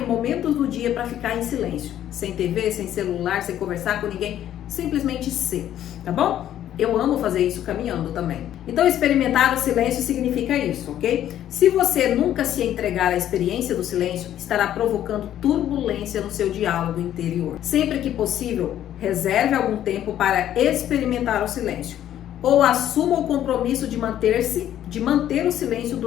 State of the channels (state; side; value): quieter; right; 11.5 dB